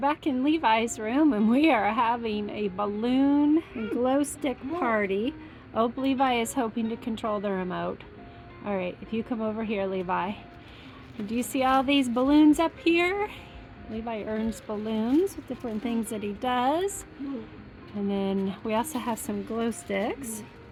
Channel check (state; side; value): identical; both; correlation 1.00